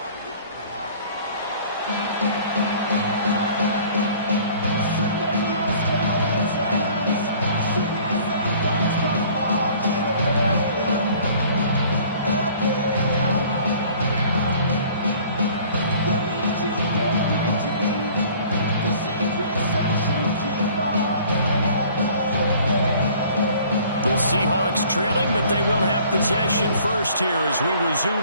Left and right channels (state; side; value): inverted; both; correlation -0.52